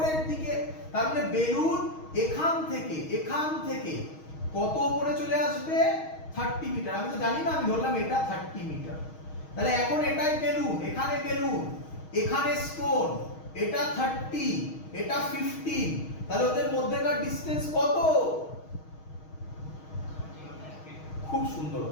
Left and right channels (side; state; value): right; late; 6.4 ms